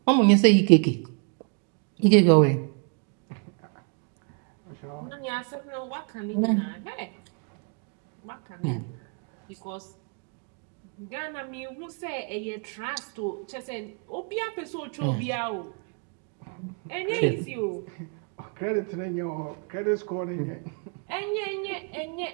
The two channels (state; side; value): quieter; left; 38.8 dB